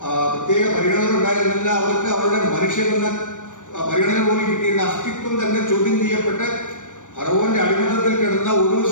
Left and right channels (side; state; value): right; late; 0.86 ms